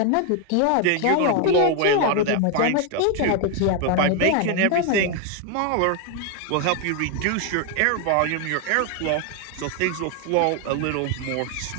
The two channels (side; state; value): both; different; correlation 0.01